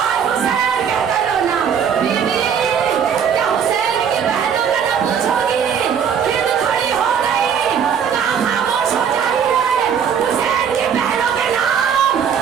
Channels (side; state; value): left; quieter; 7.6 dB